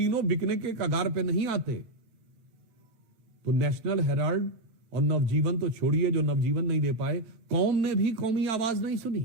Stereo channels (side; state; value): left; late; 8.9 ms